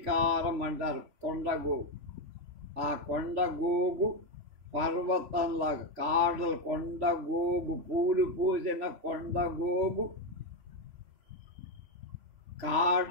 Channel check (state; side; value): late; left; 3.5 ms